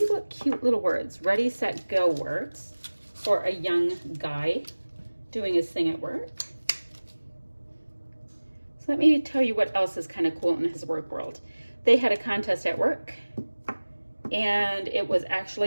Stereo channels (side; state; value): both; inverted; correlation -1.00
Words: what cute little words. Ready, set, go works for a young guy doing his thing at work. So let me tell you what else is kind of cool in his work world. They had a contest at work, and it was